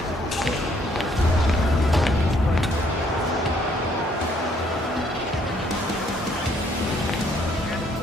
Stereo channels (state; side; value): normal; both; correlation 0.66